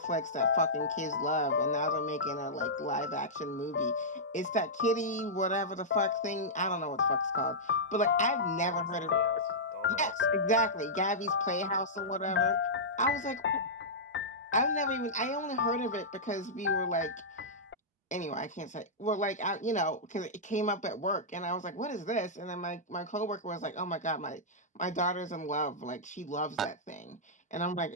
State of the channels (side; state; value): both; normal; correlation -0.12